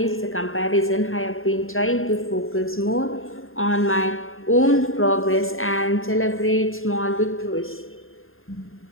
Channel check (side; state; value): right; late; 0.61 ms